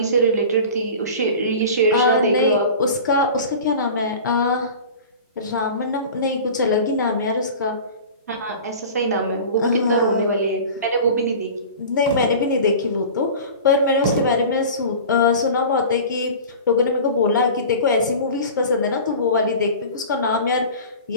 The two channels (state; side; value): inverted; both; correlation -0.37